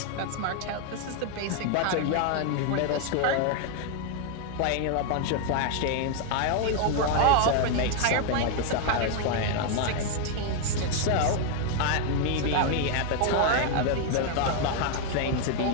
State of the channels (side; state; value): both; different; correlation 0.00